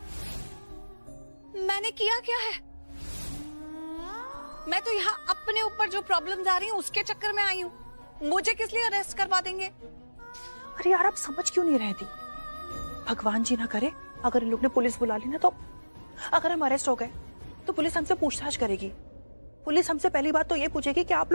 मैंने किया क्या है? मैं तो यहाँ अपने ऊपर जो प्रॉब्लम्स आ रही हैं उसके चक्कर में आई हूँ, मुझे किस लिए अरेस्ट करवा देंगे? अरे यार आप समझ क्यों नहीं रहती? भगवान जी ना करे अगर इन लोग ने पुलिस बुला ली ना, तो अगर हम अरेस्ट हो गए तो पुलिस हमसे पूछताछ करेगी। पुलिस हमसे पहली बात तो ये पूछेगी कि आप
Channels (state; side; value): inverted; both; correlation -1.00